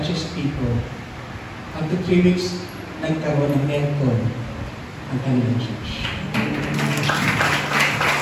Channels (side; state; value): both; identical; correlation 1.00